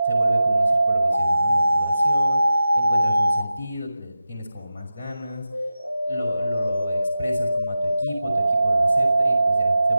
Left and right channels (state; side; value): inverted; both; correlation -0.93